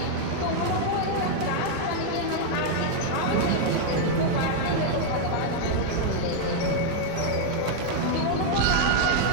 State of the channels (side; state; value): both; different; correlation 0.00